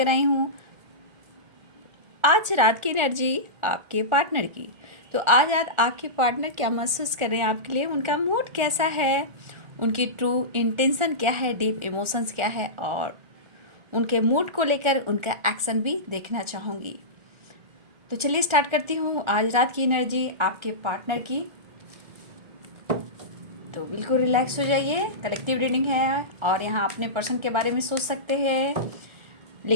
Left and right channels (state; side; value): late; left; 1.4 ms